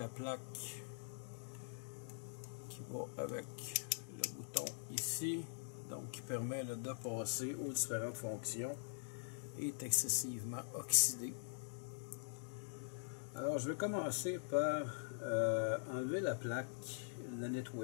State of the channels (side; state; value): right; silent; digital silence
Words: plaque qui va avec le bouton ici, donc qui permet de passer aux différentes fonctions, est excessivement oxydée. Alors, je vais commencer par enlever la plaque, la